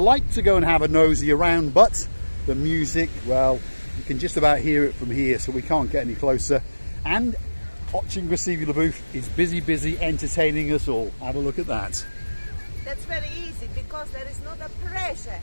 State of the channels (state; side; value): inverted; both; correlation -1.00